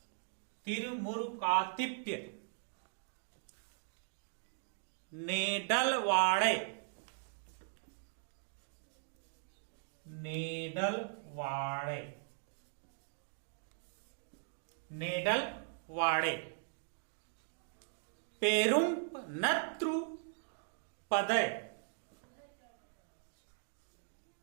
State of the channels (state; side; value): silent; left; digital silence